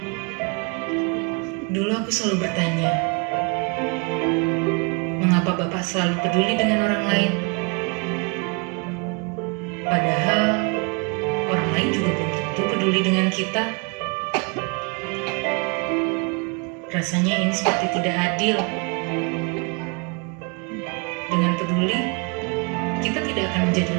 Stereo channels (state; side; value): quieter; left; 33.1 dB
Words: Dulu aku selalu bertanya, mengapa Bapak selalu peduli dengan orang lain? Padahal orang lain juga belum tentu peduli dengan kita. Rasanya ini seperti tidak adil. Dengan peduli, kita tidak akan menjadi